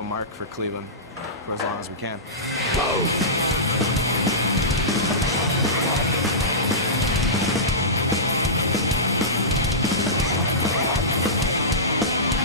mark for Cleveland for as long as we can.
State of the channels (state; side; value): normal; both; correlation -0.19